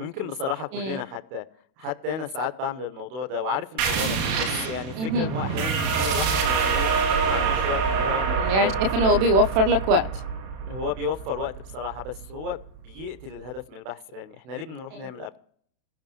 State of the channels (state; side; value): late; left; 32 ms